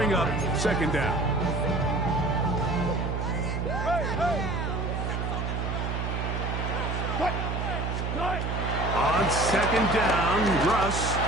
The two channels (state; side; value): noise; right; hum, 1 dB below the sound